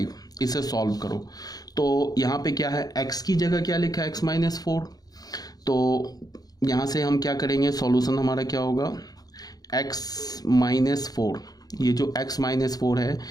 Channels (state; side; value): late; right; 0.19 ms